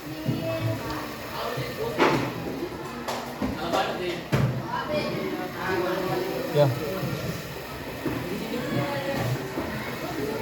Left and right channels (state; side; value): identical; both; correlation 1.00